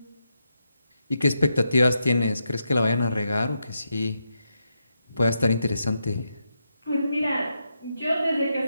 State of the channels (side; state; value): both; inverted; correlation -0.84